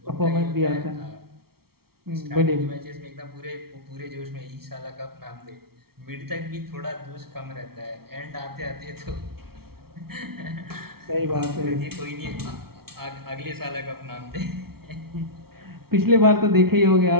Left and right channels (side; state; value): left; late; 0.94 ms